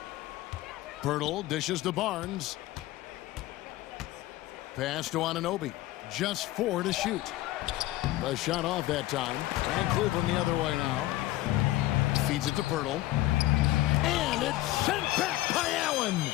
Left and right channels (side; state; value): right; quieter; 16.6 dB